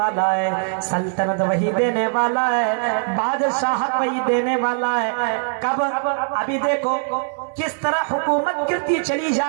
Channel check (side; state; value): left; silent; digital silence